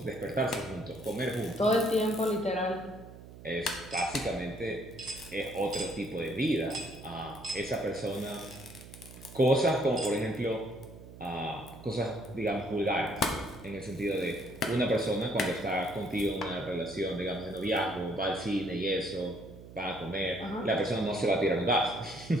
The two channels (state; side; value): noise; right; hum, 16 dB below the sound